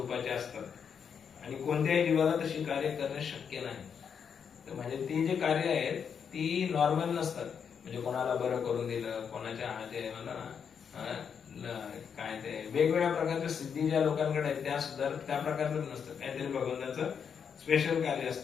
असतात आणि कोणत्याही जीवाला तशी कार्य करणे शक्य नाही. तर म्हणजे ती जी कार्य आहेत ती नॉर्मल नसतात. म्हणजे कोणाला बरं करून दिलं, कोणाच्या हाते काय ते वेगवेगळ्या प्रकारच्या सिद्धी ज्या लोकांकडे आहेत त्या सुद्धा त्या प्रकारचं नसतं. काहीतरी भगवंताचं स्पेशल कार्य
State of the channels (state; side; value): quieter; right; 7.1 dB